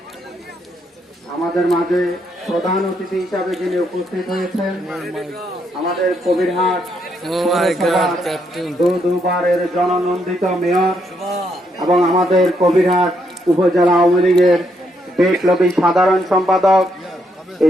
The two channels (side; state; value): both; normal; correlation 0.76